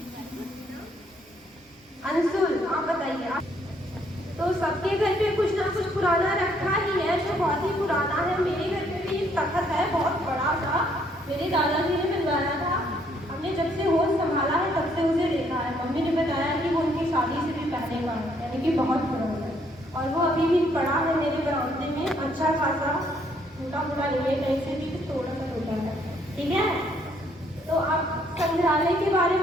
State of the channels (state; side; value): normal; both; correlation 0.68